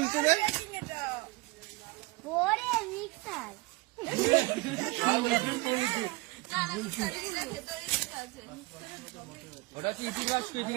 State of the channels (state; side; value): quieter; left; 22.6 dB